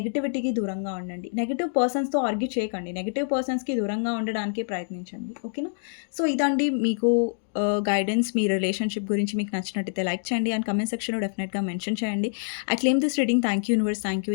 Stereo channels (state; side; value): silent; right; digital silence